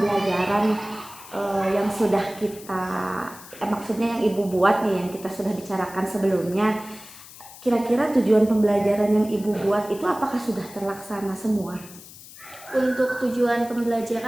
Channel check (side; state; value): left; noise; hiss, 18 dB below the sound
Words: yang sudah kita maksudnya yang Ibu buat nih, yang kita sudah bicarakan sebelumnya, kira-kira tujuan pembelajaran yang Ibu buat itu apakah sudah terlaksana semua? Untuk tujuan